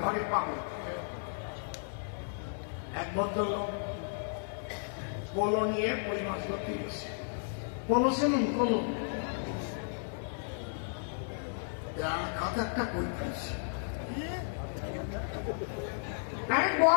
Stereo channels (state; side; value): silent; right; 55 dB below the other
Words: ঘরে পাবো, এক ভদ্রলোক পোলো নিয়ে কই মাছ ধরতে গেছে। পোলো চেনেন? পোলো খাতা একটা কই পাইছে।